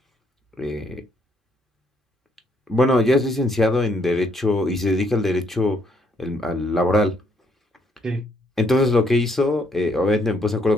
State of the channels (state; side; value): normal; both; correlation 0.71